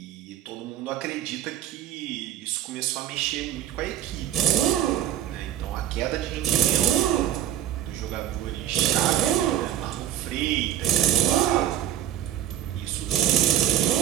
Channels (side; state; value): left; quieter; 11.4 dB